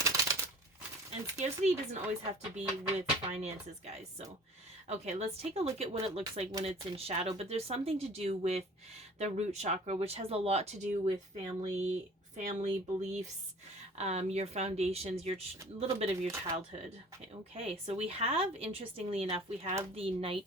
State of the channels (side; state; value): both; normal; correlation 0.46